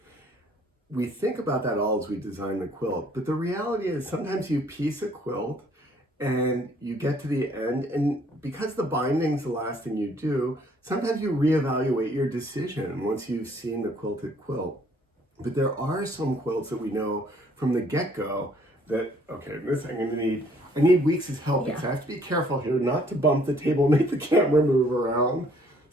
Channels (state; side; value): normal; both; correlation 0.62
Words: We think about that all as we design the quilt, but the reality is sometimes you piece a quilt and you get to the end, and because the binding's the last thing you do, sometimes you reevaluate your decision once you've seen the quilted quilt. But there are some quilts that we know from the get-go that, okay, this I need Weeks' help because I have to be careful here not to bump the table and make the camera move around